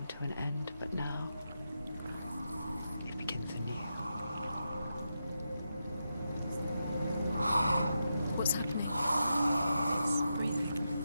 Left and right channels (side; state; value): both; inverted; correlation -0.87